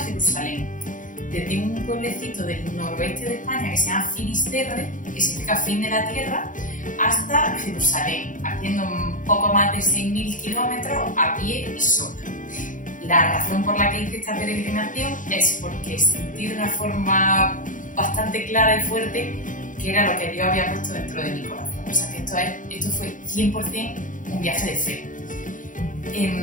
Desde un pueblecito del noroeste de España que se llama Finisterre, que significa fin de la tierra, hasta Jerusalén, haciendo un poco más de 6.000 kilómetros a pie y sola. La razón por la que hice esta peregrinación es porque sentí de una forma bastante clara y fuerte que era lo que Dios había puesto dentro de mi corazón. O sea que esto fue 100% un viaje de fe.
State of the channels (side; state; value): right; late; 0.38 ms